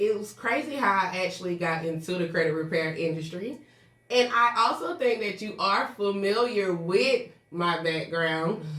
was crazy how I actually got into the credit repair industry. And I also think that you are familiar with my background.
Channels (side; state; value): both; identical; correlation 1.00